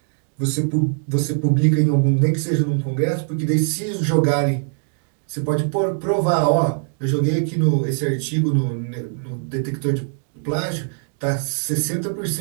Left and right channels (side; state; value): left; silent; 65 dB below the other